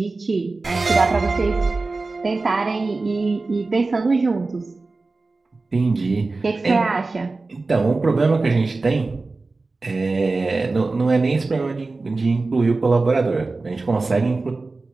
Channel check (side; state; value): left; quieter; 3.6 dB